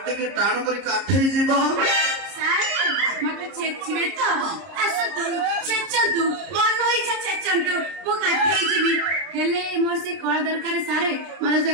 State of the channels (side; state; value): left; late; 30 ms